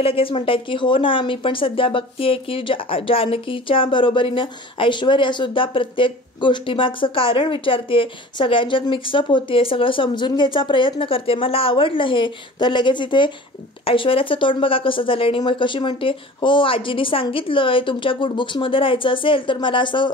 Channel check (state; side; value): normal; both; correlation 0.41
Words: लगेच म्हणतायत की हो ना, मी पण सध्या बघतीये की जानकीच्या बरोबरीनं ऐश्वर्या सुद्धा प्रत्येक गोष्टीमागचं कारण विचारते, सगळ्यांच्यात मिक्सअप होते, सगळं समजून घ्यायचा प्रयत्न करते, मला आवडलं हे. तर लगेच इथे ऐश्वर्याचं तोंड बघा कसं झालं आणि मग कशी म्हणते, हो आजीनी सांगितलंय तुमच्या गुडबुक्समध्ये राहायचं असेल तर मला असं